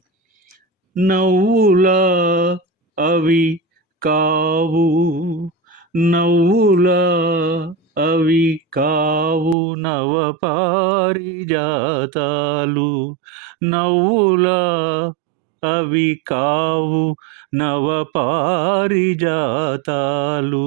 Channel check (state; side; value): drops out; left; at 9.6 s